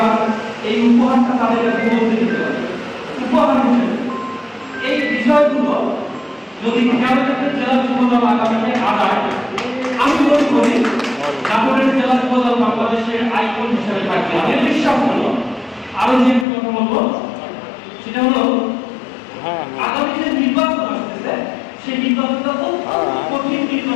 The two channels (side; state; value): right; drops out; at 16.4 s